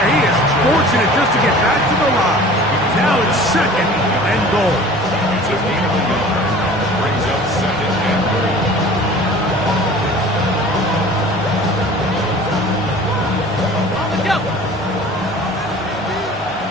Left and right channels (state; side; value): normal; both; correlation 0.44